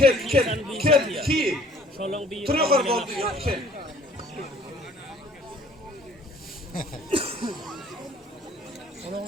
Tırıyor karı oldu ya iki.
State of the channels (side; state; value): both; normal; correlation 0.54